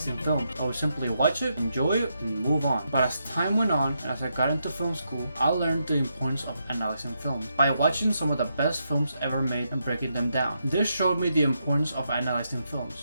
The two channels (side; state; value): both; inverted; correlation -0.82